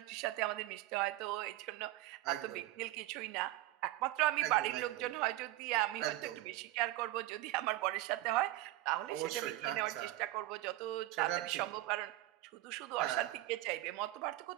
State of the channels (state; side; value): quieter; left; 16.5 dB